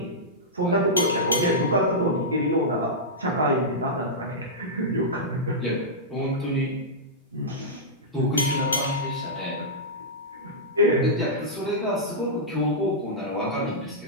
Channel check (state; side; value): normal; both; correlation -0.12